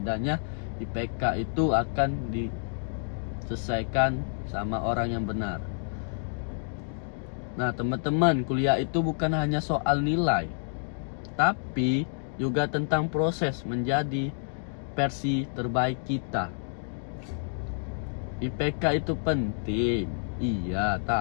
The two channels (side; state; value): right; silent; digital silence